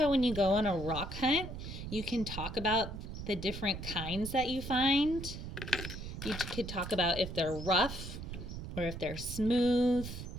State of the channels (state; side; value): noise; right; rumble, 8 dB below the sound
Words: when you go on a rock hunt, you can talk about the different kinds that you find. You could talk about if they're rough or if they're smooth.